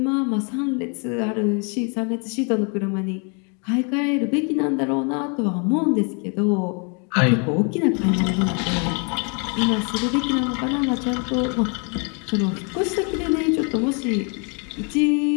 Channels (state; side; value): quieter; right; 36.3 dB